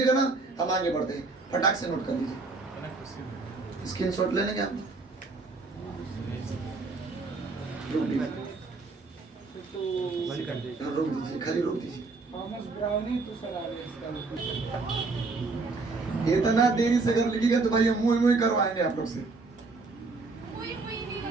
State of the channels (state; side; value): quieter; left; 3.8 dB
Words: ना, हम आगे बढ़ते हैं। फटाक से नोट कर लीजिए, स्क्रीनशॉट ले लेंगे हम। रोक दीजिए, खाली रोक दीजिए। इतना देरी से अगर लिखिएगा तो भाई हम मुँह मुँह करवाएंगे आप लोग से। कोई नहीं